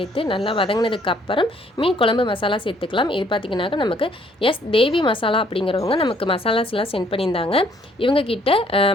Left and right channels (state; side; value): normal; both; correlation 0.64